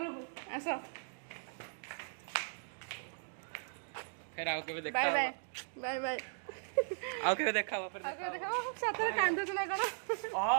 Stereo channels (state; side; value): silent; left; digital silence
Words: ଆସ। ଫେର ଆଉ କେବେ ଦେଖା ବାଏ ହବ। Bye bye bye. ଆଉ କେବେ ଦେଖା ହବ ଫେର ଆଉ କେବେ ଦେଖା ହବ? ସତରେ କାନ୍ଦୁଛୁ ନା କଣ?